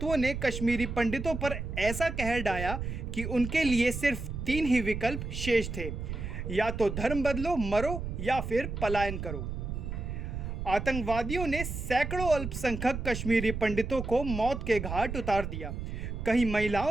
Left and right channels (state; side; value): noise; right; rumble, 5 dB below the sound